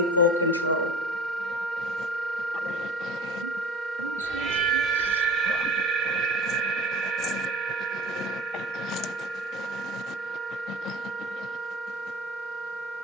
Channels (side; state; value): both; normal; correlation 0.39